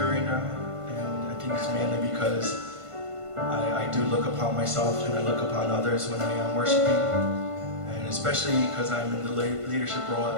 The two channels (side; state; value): left; late; 1.5 ms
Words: right now, and I think it's mainly because I do look upon myself and I look upon others when I am worshiping, and especially because I'm in the leadership role